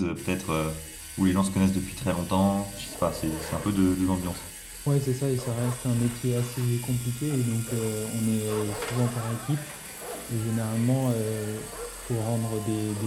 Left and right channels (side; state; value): both; identical; correlation 1.00